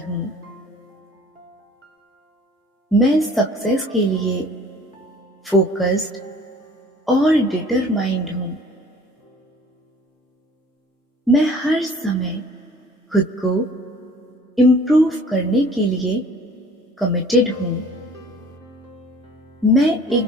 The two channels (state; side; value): normal; both; correlation 0.50